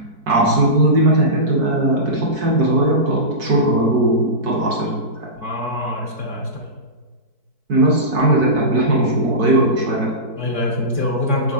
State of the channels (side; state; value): left; late; 4.6 ms